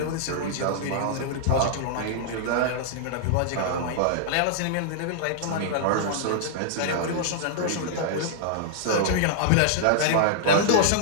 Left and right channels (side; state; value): both; different; correlation -0.01